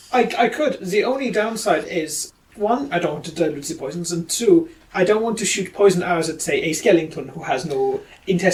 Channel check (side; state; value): both; identical; correlation 1.00